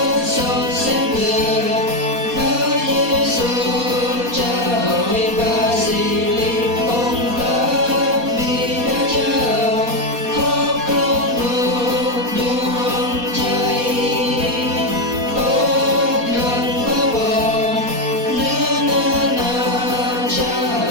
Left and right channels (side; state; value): left; late; 4.2 ms